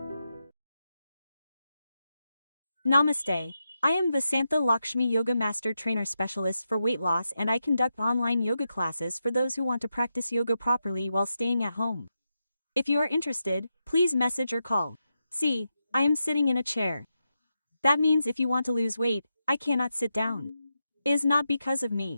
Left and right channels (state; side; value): inverted; both; correlation -0.87